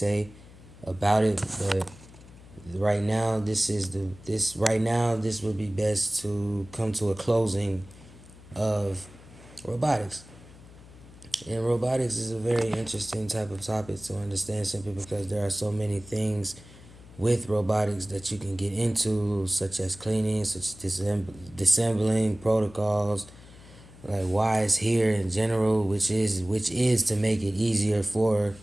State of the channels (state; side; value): noise; left; hum, 20 dB below the sound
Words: about it, but right now this would be best to come to a closing of robotics. And robotics is a very interesting type of topic to understand, simply because there are so many things with robotics that you can get into, such as cleaning, such as disassembling protocols, like why it's here in general, which is to make it easier for